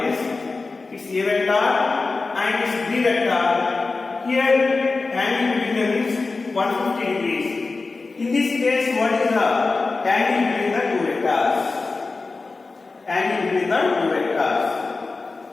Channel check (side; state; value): right; quieter; 3.8 dB